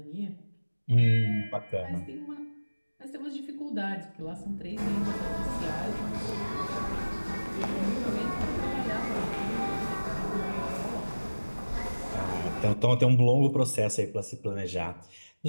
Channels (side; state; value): both; inverted; correlation -1.00